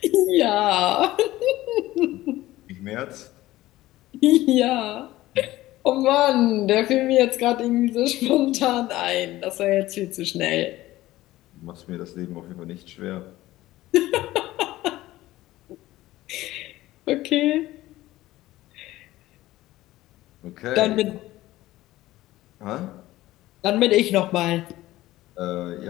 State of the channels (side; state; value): right; quieter; 16.5 dB